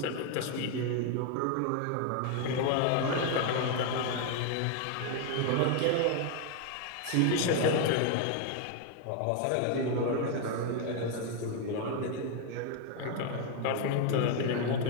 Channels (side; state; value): both; different; correlation 0.01